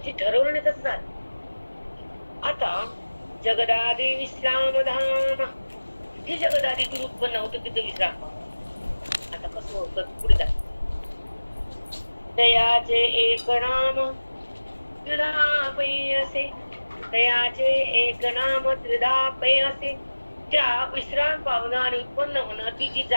ठरवलं नाही तसं झालं. आता जगदादि विश्राम धाम, हे जगदादीतून उत्पन्न होतं, तिथे विश्राम पावतो. आता कसं होतं पुढे जात. तयाचे एक नाम त्रिधा पै असे, तयाचे एक नाम त्रिधा पै असे. त्या विश्राम पावणं आणि उत्पन्न होणं, ती जी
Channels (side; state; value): both; inverted; correlation -1.00